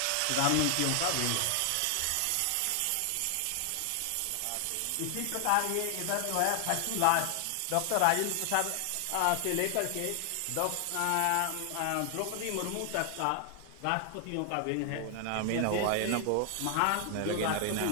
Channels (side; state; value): both; different; correlation 0.00